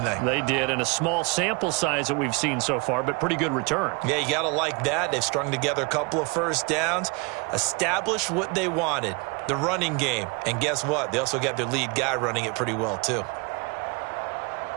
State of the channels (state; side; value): quieter; left; 29.9 dB